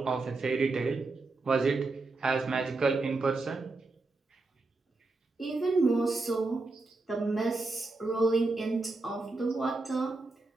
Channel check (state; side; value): quieter; left; 3.4 dB